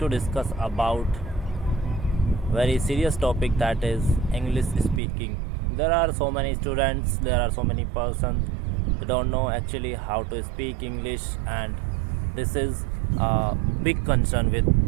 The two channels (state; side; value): drops out; left; at 5.0 s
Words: discuss about very serious topic, that is English speaking. There are so many students, there are so many persons who don't know actually how to speak English, and this is a big concern with